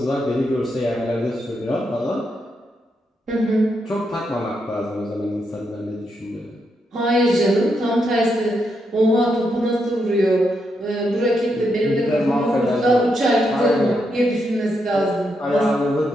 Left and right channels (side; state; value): both; normal; correlation 0.81